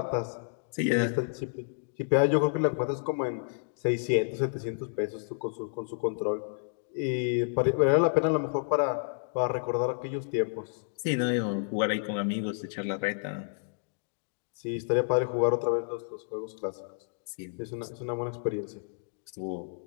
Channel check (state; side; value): silent; right; digital silence